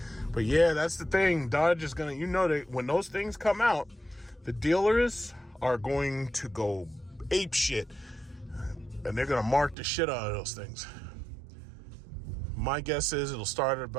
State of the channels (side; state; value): left; drops out; at 9.8 s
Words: But yeah, that's the thing. Dodge is gonna, that when those things come out, the dealers are going to go ape shit, and they're gonna mark the shit out of those things. My guess is it'll start at